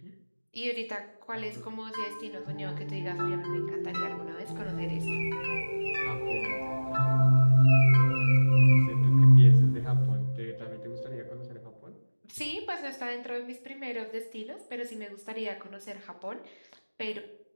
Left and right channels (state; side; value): inverted; both; correlation -1.00